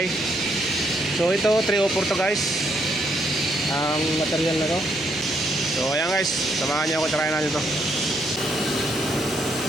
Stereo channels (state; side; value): normal; both; correlation 0.74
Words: So ito 304 to guys, ang material na to. So ayan guys, samahan nyo ako, try natin to.